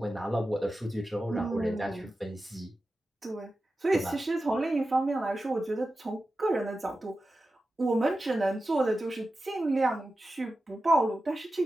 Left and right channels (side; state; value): both; normal; correlation 0.93